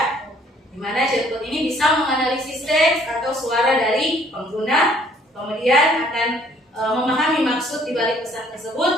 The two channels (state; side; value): normal; both; correlation 0.61